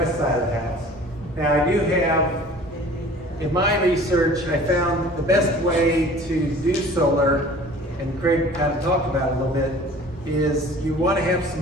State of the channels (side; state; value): both; normal; correlation 0.46